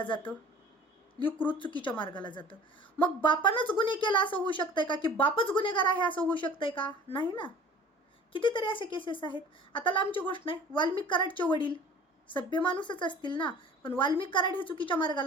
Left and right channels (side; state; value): both; normal; correlation 0.46